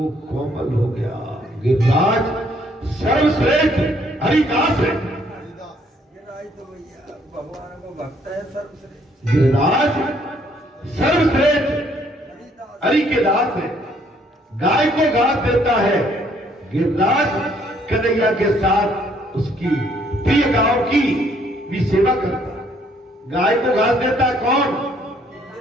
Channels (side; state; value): both; normal; correlation 0.66